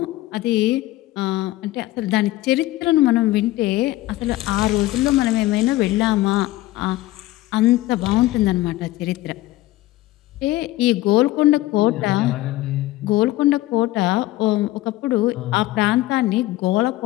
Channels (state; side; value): quieter; right; 17.1 dB